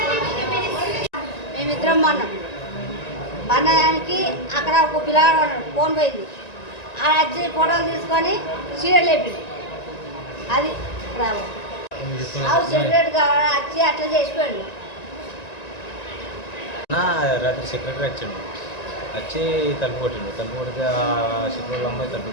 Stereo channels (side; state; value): right; late; 1.9 ms